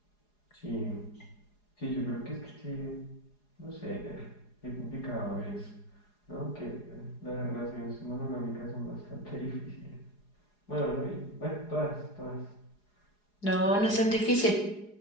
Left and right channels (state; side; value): late; right; 4.8 ms